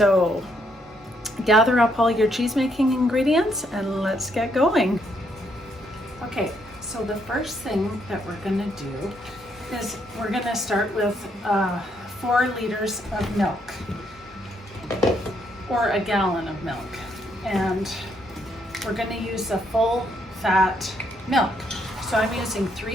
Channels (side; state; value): both; normal; correlation 0.73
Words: gather up all your cheese making ingredients and let's get going. Okay, so the first thing that we're gonna do is we're gonna start with 4 liters of milk, or a gallon of milk. And we're gonna use a full fat milk. So I'm using